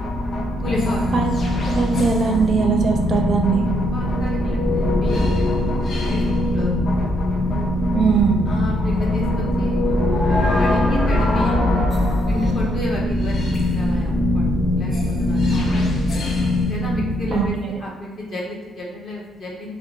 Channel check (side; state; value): both; normal; correlation 0.74